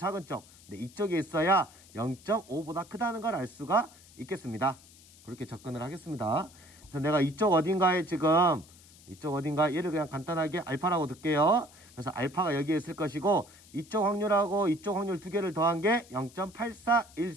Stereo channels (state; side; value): noise; left; hiss, 23 dB below the sound